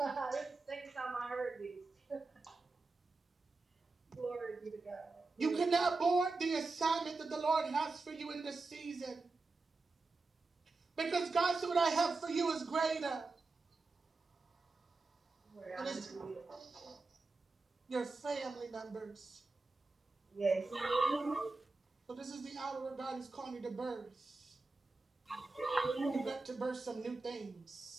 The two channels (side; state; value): left; quieter; 3.7 dB